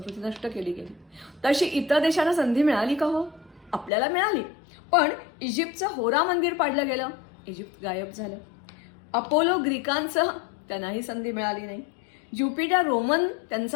नष्ट केली गेली तशी इतर देशांना संधी मिळाली का? हो, आपल्याला मिळाली. पण इजिप्तचं होरा मंदिर पाडलं गेलं, इजिप्त गायब झालं. अपोलो ग्रीकांचं, त्यांनाही संधी मिळाली नाही. ज्युपिटर रोमन,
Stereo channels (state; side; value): drops out; right; at 3.9 s